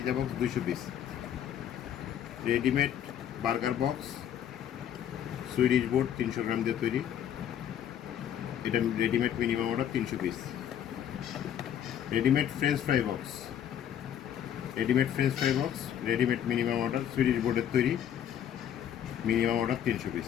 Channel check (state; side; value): quieter; right; 10.0 dB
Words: box 200 piece. Readymade burger box Swedish board 300 গ্রাম দিয়ে তৈরি, এটা readymade minimum order 300 piece. Readymade French fry box, readymade minimum order Swedish বোর্ডের তৈরি, minimum order 300 piece.